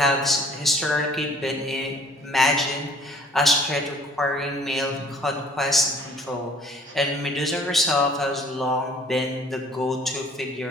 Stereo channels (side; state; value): both; normal; correlation 0.54